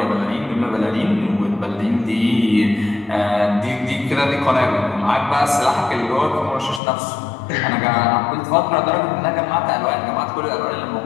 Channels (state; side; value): drops out; right; at 6.8 s